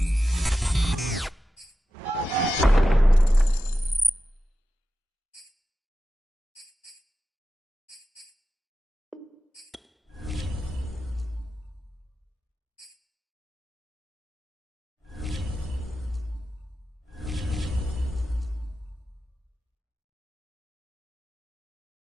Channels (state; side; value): normal; both; correlation 0.92